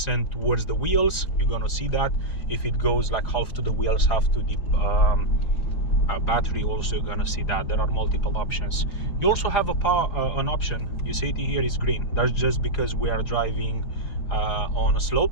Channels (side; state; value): right; late; 5.0 ms